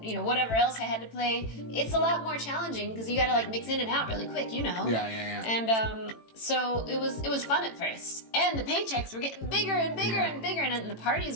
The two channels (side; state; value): right; late; 18 ms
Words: whatever else I had to play, it's a lot more challenging because you gotta like mix in and out really quick, Yeah. And so it was fun at first. And the paychecks were getting bigger and bigger and bigger, and the parties